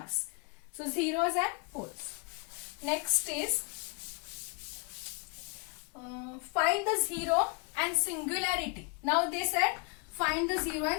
So zeros and poles. Next is find the zero and singularity. Now they said find the zero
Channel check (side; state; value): right; quieter; 32.9 dB